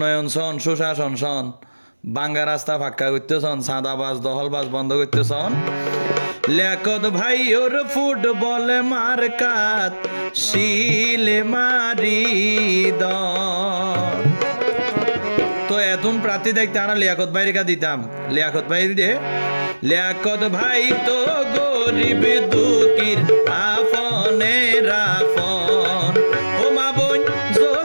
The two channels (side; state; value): both; inverted; correlation -1.00